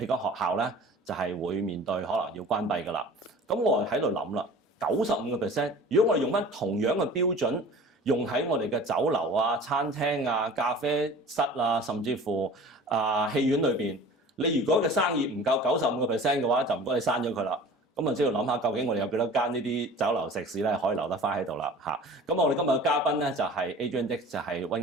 個學校咧就係會面對可能要關閉㗎啦。咁我喺度諗啦，95%，如果我哋用翻同樣嘅標準，用喺我哋嘅酒樓啊、餐廳啊、咖啡室啊，甚至乎戲院裏邊，你如果嘅生意唔夠95%嘅話，就唔該你刪咗佢啦。咁啊，只要諗下究竟我哋有幾多間呢啲酒樓食肆咧可以留得翻喺度啦嚇。咁我哋今日嘅嘉賓咧就係 Adrian Dix， 就係溫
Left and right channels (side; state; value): both; normal; correlation 0.42